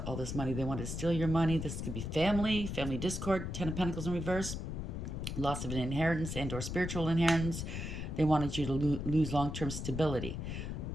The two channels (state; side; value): noise; left; rumble, 5 dB below the sound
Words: all this money. They want to steal your money. This could be family discord, Ten of Pentacles in reverse, loss of an inheritance and or spiritual inheritance. They wanted you to lose long-term stability.